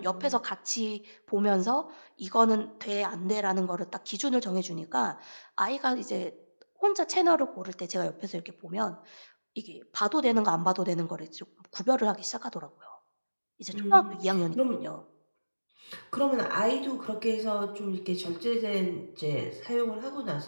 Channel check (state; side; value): inverted; both; correlation -1.00